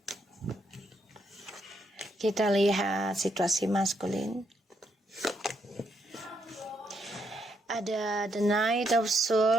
Kita lihat situasi maskulin. Ada the Knight of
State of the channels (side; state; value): both; normal; correlation 0.76